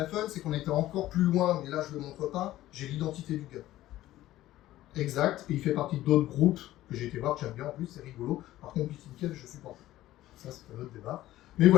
fun, c'est qu'on était encore plus loin, mais là je ne le montre pas, j'ai l'identité du gars. Exact, et il fait partie d'autres groupes que j'ai été voir, que j'aime bien en plus, c'est rigolo. Par contre, BitInCave, je supporte. Ça, c'est un autre débat. Mais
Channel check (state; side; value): quieter; right; 15.0 dB